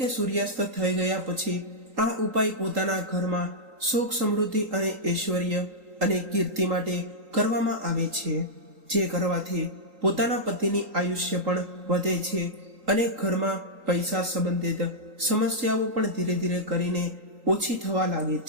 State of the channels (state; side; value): late; left; 3.8 ms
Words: સૂર્યાસ્ત થઈ ગયા પછી આ ઉપાય પોતાના ઘરમાં સુખ, સમૃદ્ધિ અને ઐશ્વર્ય અને કીર્તિ માટે કરવામાં આવે છે, જે કરવાથી પોતાના પતિની આયુષ્ય પણ વધે છે અને ઘરમાં પૈસા સંબંધિત સમસ્યાઓ પણ ધીરે ધીરે કરીને ઓછી થવા લાગે